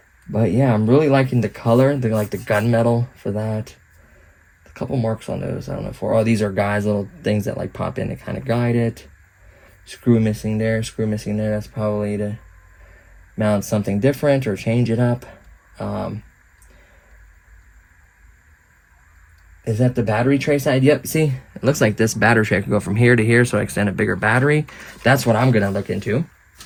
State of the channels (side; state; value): both; identical; correlation 1.00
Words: But yeah, I'm really liking the color. They like the gunmetal for that. A couple marks on those. I don't know for. Oh, these are guys, little things that like pop in to kind of guide it. Screw missing there. Screw missing there. That's probably to mount something different or change it up. Is that the battery tray side? Yep, see? It looks like this battery tray can go from here to here, so I extend a bigger battery. That's what I'm going to look into.